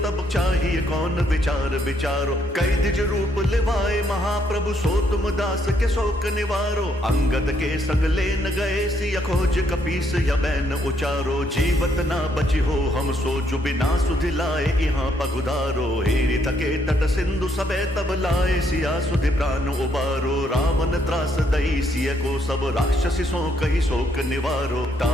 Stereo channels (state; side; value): normal; both; correlation 0.72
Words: तब चाहिए कौन विचार विचारो। कई द्विज रूप लिवाए महाप्रभु सो तुम दास के शोक निवारो। अंगद के संग लेन गए सिया खोज कपीस यबैन उचारो। जीवत ना बची हो हम सो जो बिना सुधि लाए यहाँ पगुधारो। हेरि थके तट सिंधु सबे तब लाए सिया सुधि प्राण उबारो। रावण त्रास दई सिय को सब राक्षसी सो कही शोक निवारो।